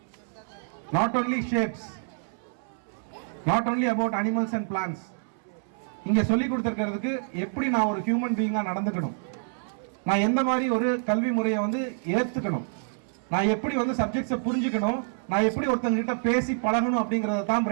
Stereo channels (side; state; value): left; silent; 60 dB below the other